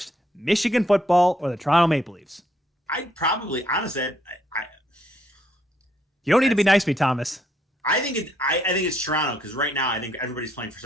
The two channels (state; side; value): normal; both; correlation 0.72